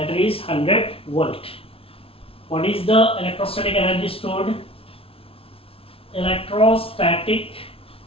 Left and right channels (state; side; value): late; right; 0.27 ms